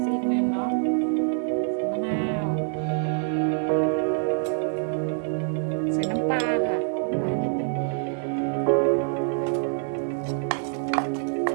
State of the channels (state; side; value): silent; left; digital silence